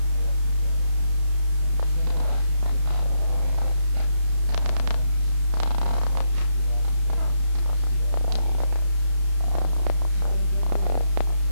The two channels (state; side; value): late; left; 32 ms